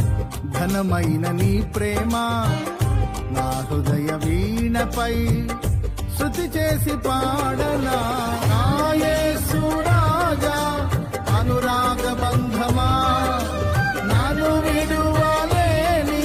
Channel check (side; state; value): both; identical; correlation 1.00